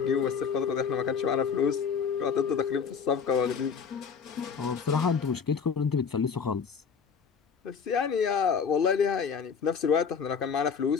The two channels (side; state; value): right; quieter; 6.3 dB